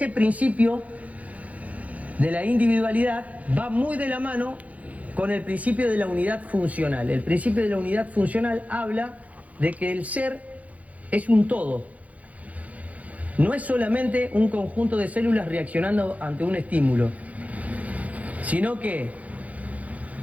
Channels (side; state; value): left; late; 0.070 ms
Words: principio de la individualidad va muy de la mano con el principio de la unidad funcional. El principio de la unidad funcional habla de que el ser es un todo. No es solamente un conjunto de células reaccionando ante un estímulo, sino que